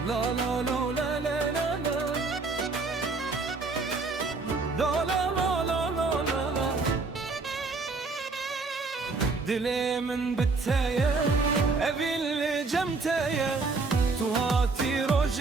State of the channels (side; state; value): left; quieter; 4.0 dB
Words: La la la la la la la. La la la la la la la. Dilimin biteye, evil cemteye, tu hati